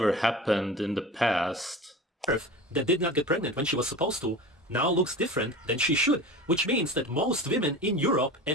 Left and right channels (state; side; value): normal; both; correlation 0.34